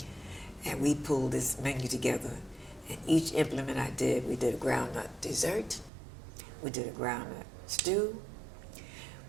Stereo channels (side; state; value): left; drops out; at 5.9 s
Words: And we pulled this menu together, and each implement I did, we did a groundnut dessert, we did a groundnut stew,